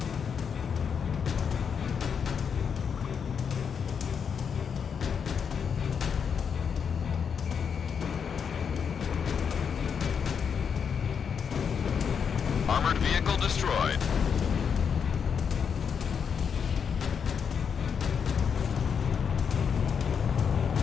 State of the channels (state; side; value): quieter; right; 6.8 dB